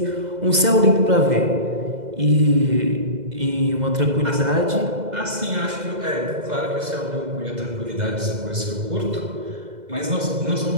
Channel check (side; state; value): left; late; 2.0 ms